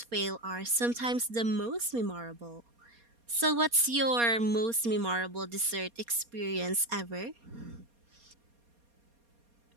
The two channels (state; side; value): late; left; 4.2 ms